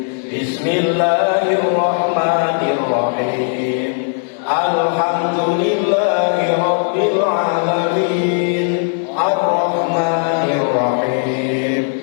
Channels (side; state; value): right; silent; digital silence